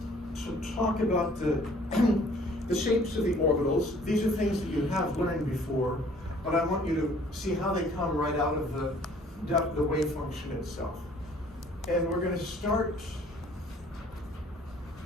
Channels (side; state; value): both; normal; correlation 0.56